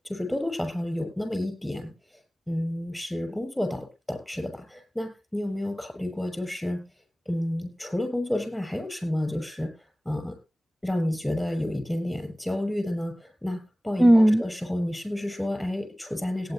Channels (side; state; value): both; normal; correlation 0.98